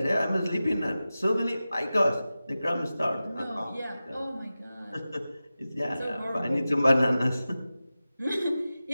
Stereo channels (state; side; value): inverted; both; correlation -0.95